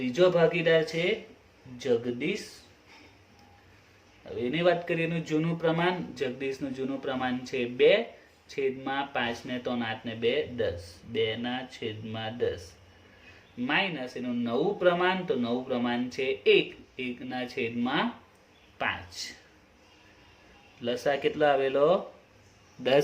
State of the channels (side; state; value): both; identical; correlation 1.00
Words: ભાગીદાર છે જગદીશ। હવે એની વાત કરીએ એનું જૂનું પ્રમાણ, જગદીશનું જૂનું પ્રમાણ છે 2, છેદમાં 5 ને 3 8 ને 2 10, 2/10, માઇનસ એનું નવું પ્રમાણ, તો નવું પ્રમાણ છે 1, 1/5। લસા કેટલો આવેલો?